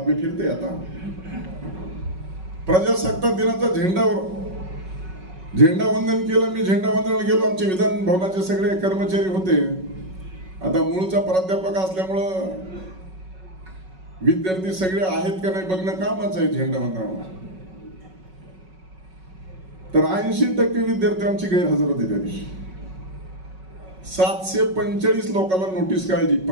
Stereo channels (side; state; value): left; late; 5.4 ms